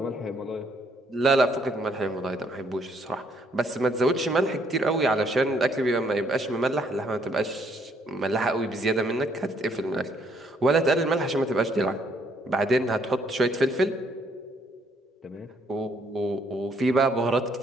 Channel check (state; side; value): normal; both; correlation 0.68